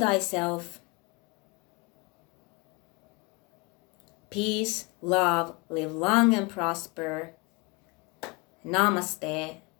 Peace, love, live long and prosper. Namaste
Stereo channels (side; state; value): right; quieter; 27.1 dB